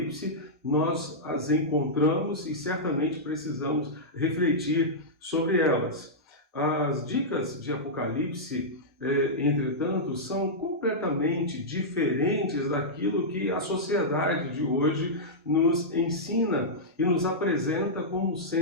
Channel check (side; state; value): both; normal; correlation -0.11